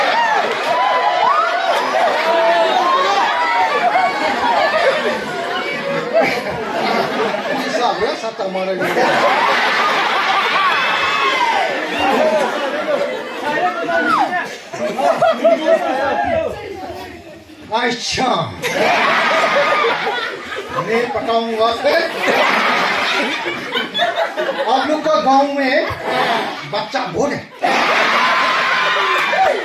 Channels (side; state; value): both; identical; correlation 1.00